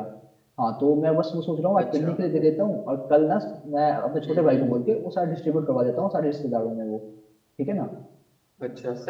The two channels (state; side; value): identical; both; correlation 1.00